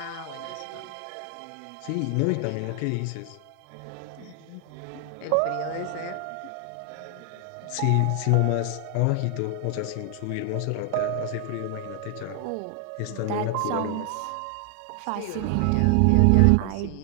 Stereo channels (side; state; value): both; different; correlation 0.00